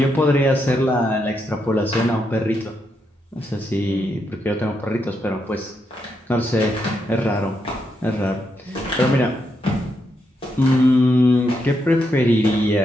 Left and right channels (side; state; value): both; normal; correlation 0.81